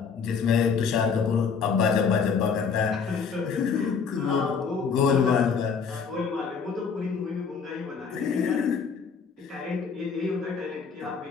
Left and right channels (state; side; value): quieter; right; 5.9 dB